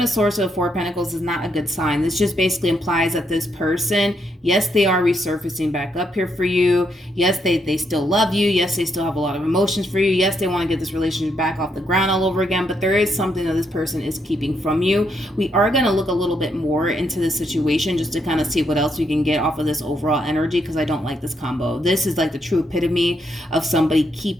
of Swords to the Four of Pentacles is not a good sign. This just basically implies that this person, yes, they are resurfacing back up here for you. Yes, they still love you. Yes, they still have a lot of emotions for you. Yes, they want to get this relationship back off the ground all over again, but there is something that this person is keeping from you. We are going to look a little bit more into this situation just to kind of see what else we can get off of this overall energy, because I don't like this combo. This is like the true epitome of somebody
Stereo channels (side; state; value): both; normal; correlation 0.77